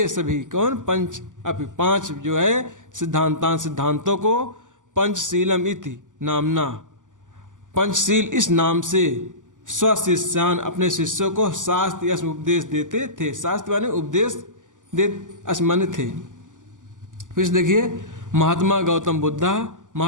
सभी कौन पंच अपि पांच जो है सिद्धांतान सिद्धांतों को पंचशीलम इति नामना पंचशील इस नाम से स्वशिष्यान अपने शिष्यों को शास्त्र यश उपदेश देते थे। शास्त्र माने उपदेश दे माने थे। फिर देखिए महात्मा गौतम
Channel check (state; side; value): late; left; 0.87 ms